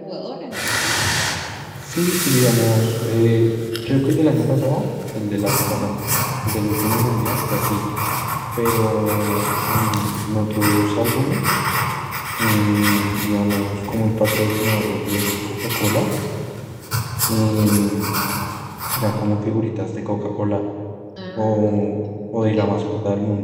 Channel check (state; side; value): identical; both; correlation 1.00